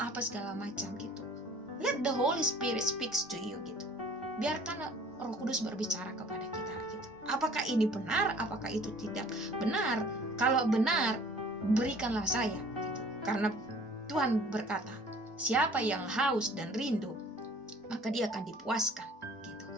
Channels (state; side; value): normal; both; correlation 0.51